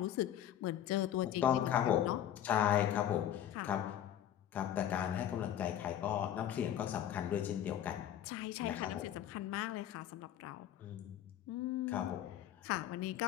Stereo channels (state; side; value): quieter; right; 10.9 dB